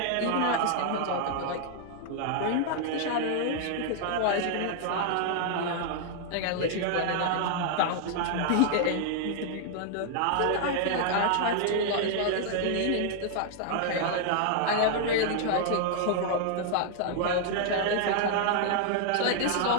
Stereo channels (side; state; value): both; different; correlation -0.01